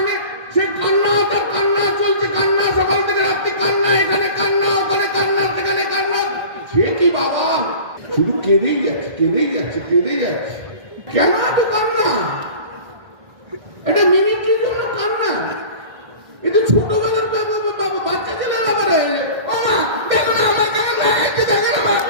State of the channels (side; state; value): left; late; 1.6 ms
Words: সে কান্না, তার কান্না চলছে, কান্না সকাল থেকে রাত্রি, কান্না এখানে কান্না, ওখানে কান্না, সেখানে কান্না। সে কি বাবা, শুধু কেঁদেই যাচ্ছে, কেঁদেই যাচ্ছে, কেঁদেই যাচ্ছে। কেন এত কান্না? এটা মিনিটের জন্য কান্না। এটা ছোটবেলার বাচ্চা ছেলের আবার হয়ে যায়। ও মা দেখো না, আমার কেমন লাগাচ্ছে, দেখো না মা,